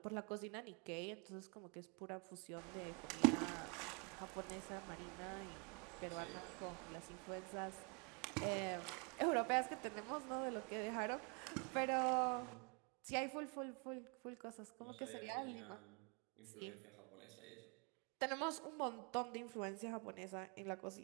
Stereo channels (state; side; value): quieter; left; 34.3 dB